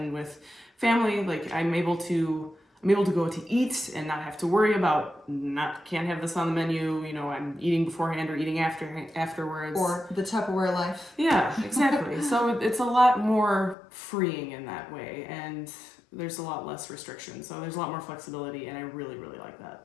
with family. Like I'm able to go to eat and not have to worry about can't have this on the menu. You know, I'm eating beforehand or eating afterwards. Or the Tupperware life. Yeah, exactly. So it's a lot more freeing in that way, and there's a lot less restriction. So there's a lot more flexibility, and I really, really like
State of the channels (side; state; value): right; drops out; at 13.8 s